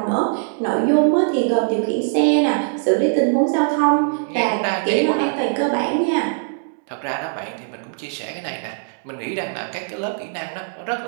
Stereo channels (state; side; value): silent; left; digital silence